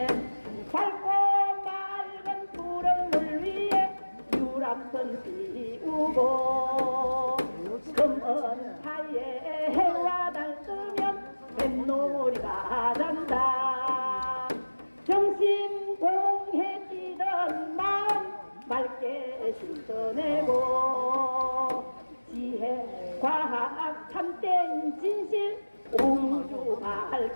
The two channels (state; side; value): inverted; both; correlation -1.00